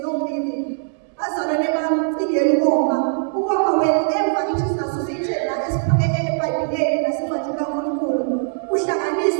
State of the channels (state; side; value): silent; left; digital silence